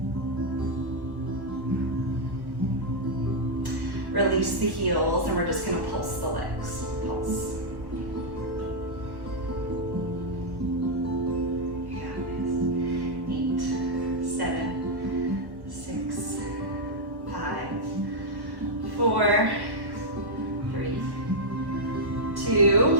Release the heels, and we're just going to pulse the legs. Pulse. You got this. 8, 7, 6, 5, 4, 3, 2.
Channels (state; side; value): late; left; 1.1 ms